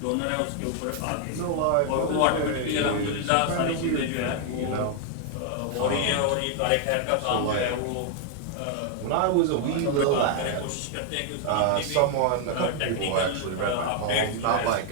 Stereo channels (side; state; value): both; different; correlation 0.00